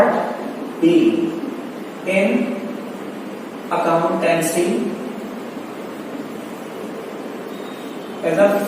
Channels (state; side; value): identical; both; correlation 1.00